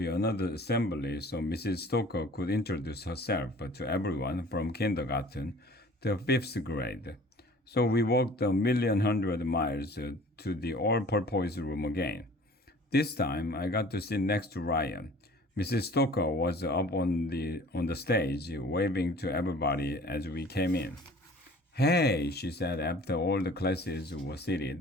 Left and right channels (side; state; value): both; normal; correlation 0.48